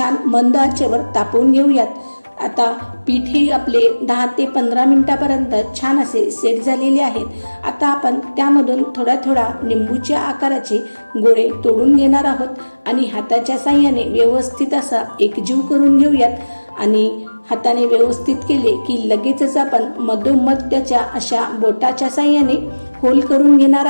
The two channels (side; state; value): both; inverted; correlation -1.00